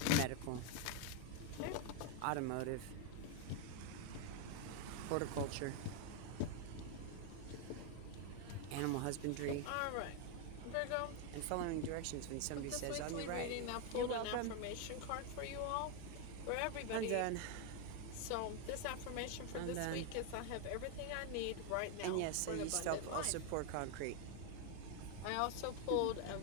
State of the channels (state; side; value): different; both; correlation 0.01